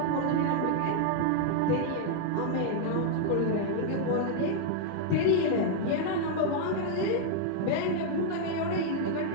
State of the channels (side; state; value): both; different; correlation 0.00